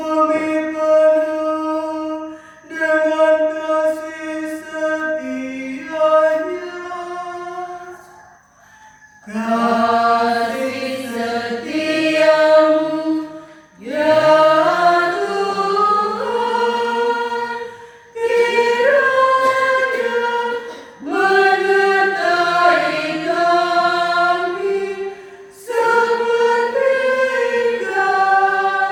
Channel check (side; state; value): both; identical; correlation 1.00